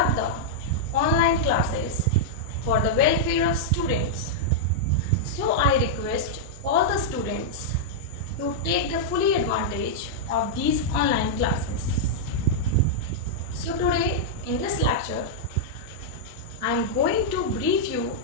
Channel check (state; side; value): normal; both; correlation -0.05